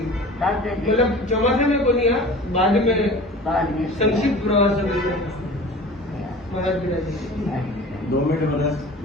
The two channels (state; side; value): normal; both; correlation 0.40